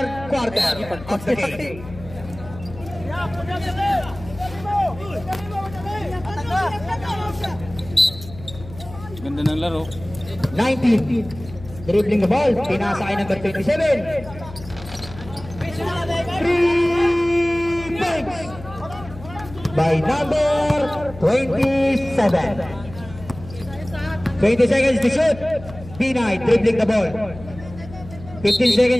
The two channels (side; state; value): left; noise; hum, 16 dB below the sound